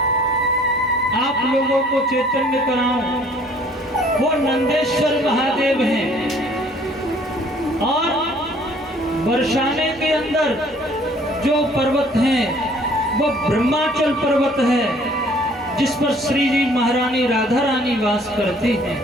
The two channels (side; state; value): both; normal; correlation 0.57